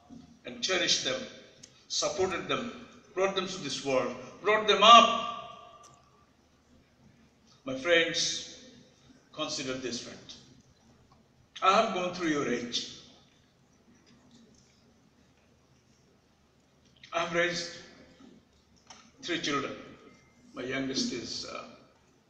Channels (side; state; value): both; identical; correlation 1.00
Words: and cherished them, supported them, brought them to this world, brought them up? My friends, consider this fact. I have gone through your age. I have raised 3 children. My youngest is